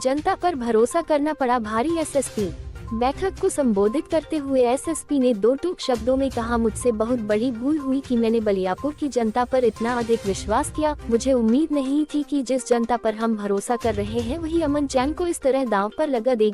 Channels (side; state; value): both; identical; correlation 1.00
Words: पर भरोसा करना पड़ा भारी। एसएसपी बैठक को संबोधित करते हुए एसएसपी ने दो टूक शब्दों में कहा, मुझसे बहुत बड़ी भूल हुई कि मैंने बलियापुर की जनता पर इतना अधिक विश्वास किया। मुझे उम्मीद नहीं थी कि जिस जनता पर हम भरोसा कर रहे हैं वही अमन चैन को इस तरह दांव पर लगा